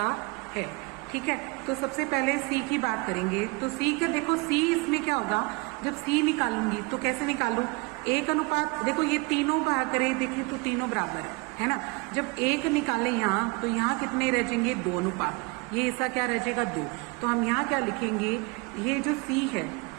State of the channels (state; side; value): quieter; left; 28.2 dB